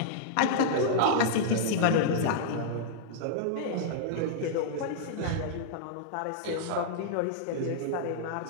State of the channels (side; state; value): both; different; correlation -0.02